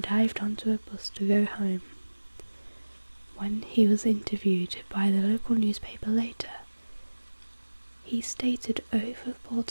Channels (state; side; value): inverted; both; correlation -1.00